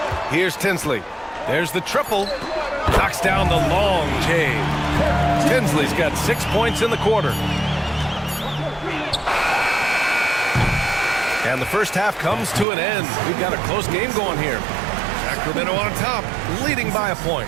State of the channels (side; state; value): left; drops out; at 12.7 s